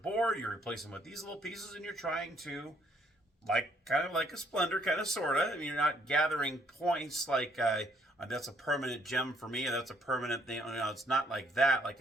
you replace them with these little pieces, and you're trying to, kind of like a Splendor, kind of, sort of. I mean, you're not gathering points like, that's a permanent gem for me, and that's a permanent thing. You know, it's not like that, like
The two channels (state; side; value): normal; both; correlation 0.68